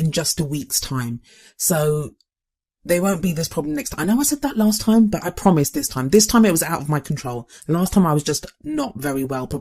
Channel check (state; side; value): identical; both; correlation 1.00